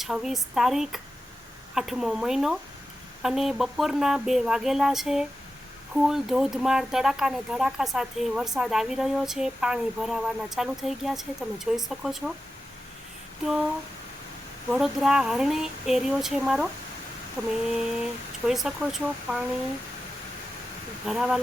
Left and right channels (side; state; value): both; normal; correlation 0.92